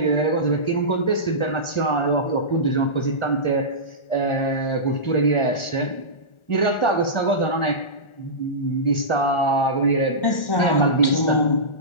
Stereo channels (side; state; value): right; late; 1.4 ms